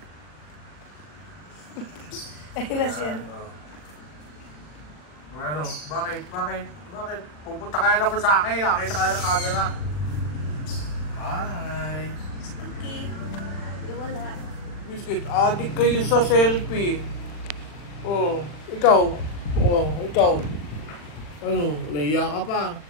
Ayun na siya. Bakit? Pupunta kaya naman sa akin. Nakita ka na ng camera. Hi. Si Cookie. Wala. Biscuit, adik kayo sa selfie. Ikaw. Ano, naiya ka pa.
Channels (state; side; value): late; right; 40 ms